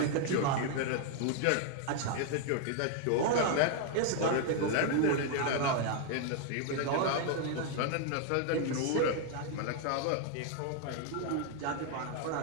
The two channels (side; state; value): both; different; correlation 0.00